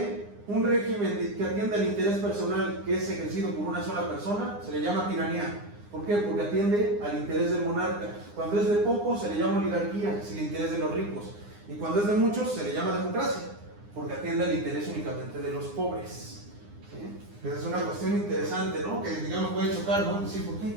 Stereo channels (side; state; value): left; late; 9.8 ms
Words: un régimen que atiende al interés personal que es ejercido por una sola persona, se le llama tiranía. ¿Por qué? Porque atiende al interés del monarca. Cuando es de pocos, se le llama oligarquía, es el interés de los ricos. Y cuando es de muchos, se le llama democracia, porque atiende al interés únicamente de los pobres. ¿Sí? Esa es una cuestión interesante, ¿no? Que digamos puede chocar, ¿no? Decir, ¿por qué